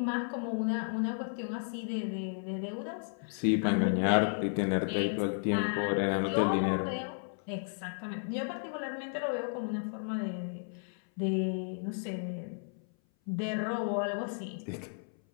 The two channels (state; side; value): silent; right; 56 dB below the other